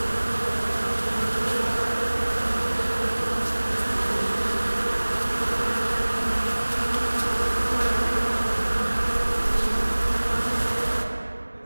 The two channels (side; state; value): both; inverted; correlation -1.00